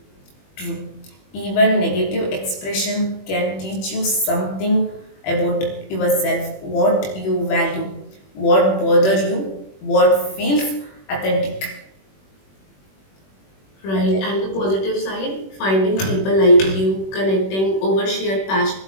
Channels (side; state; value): right; late; 21 ms